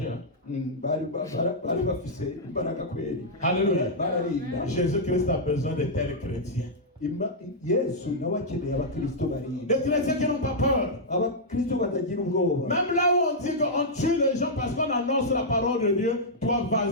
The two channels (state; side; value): normal; both; correlation -0.07